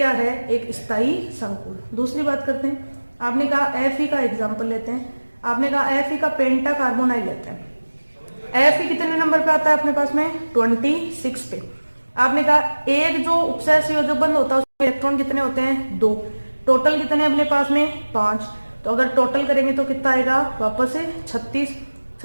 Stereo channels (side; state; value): both; inverted; correlation -1.00